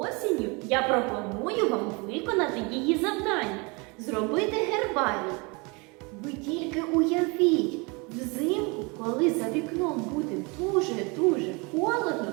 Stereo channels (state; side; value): quieter; left; 29.0 dB